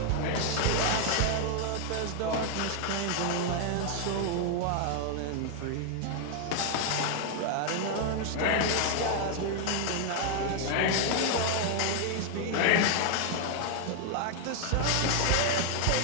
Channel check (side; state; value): both; different; correlation 0.00